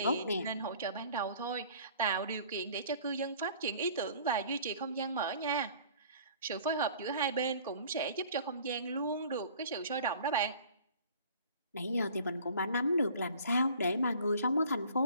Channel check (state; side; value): inverted; both; correlation -0.50